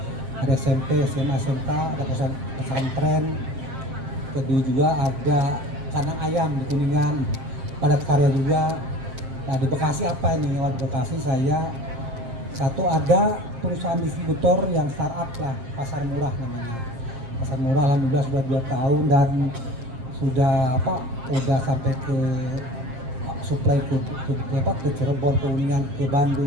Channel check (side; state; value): left; late; 7.5 ms